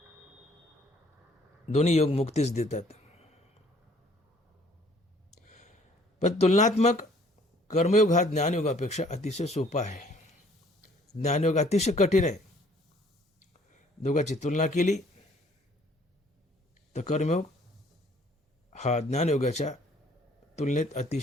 दोन्ही योग मुक्तीच देतात. पण तुलनात्मक कर्मयोग हा ज्ञानयोगापेक्षा अतिशय सोपा आहे. ज्ञानयोग अतिशय कठीण आहे. दोघांची तुलना केली तर कर्मयोग हा ज्ञानयोगाच्या तुलनेत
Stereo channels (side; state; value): both; normal; correlation 0.59